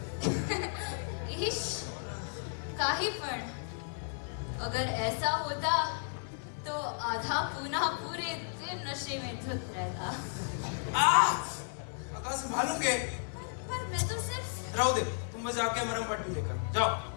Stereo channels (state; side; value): silent; right; 55 dB below the other